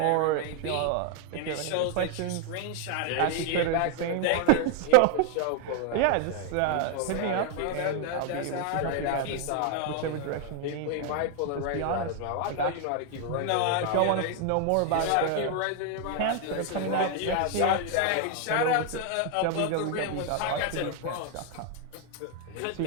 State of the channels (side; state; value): both; different; correlation 0.00